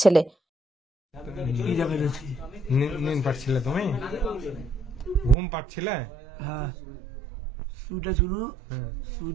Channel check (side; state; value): left; drops out; at 5.4 s